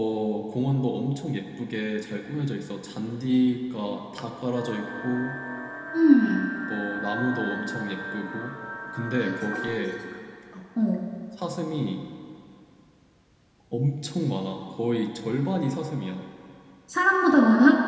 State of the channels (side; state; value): both; identical; correlation 1.00